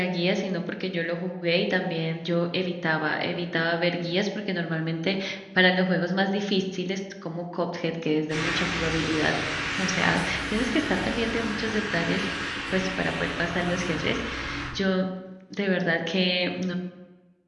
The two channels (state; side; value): identical; both; correlation 1.00